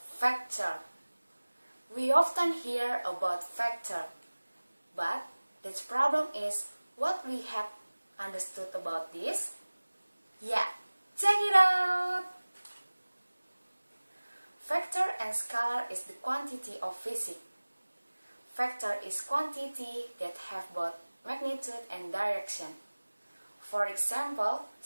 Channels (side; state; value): both; inverted; correlation -1.00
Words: We often hear about factor, but the problem is what we have understood about this. Yeah, check it out! Factor and scalar is the quantity of physics. Factor is quantity that have both magnitude and direction. For example,